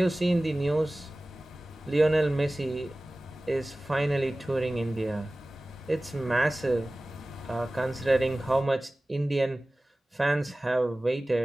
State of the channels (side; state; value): both; normal; correlation 0.97